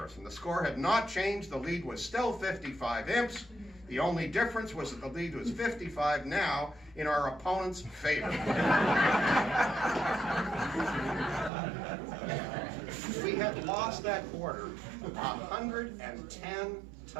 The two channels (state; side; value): drops out; left; at 11.5 s